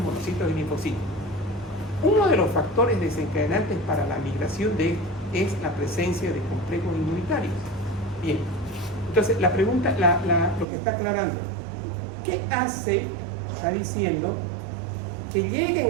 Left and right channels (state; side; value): drops out; left; at 10.7 s